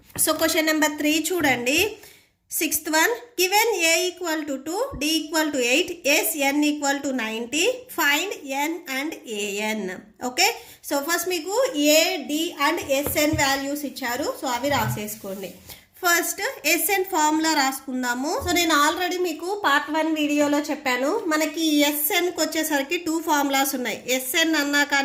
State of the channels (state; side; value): identical; both; correlation 1.00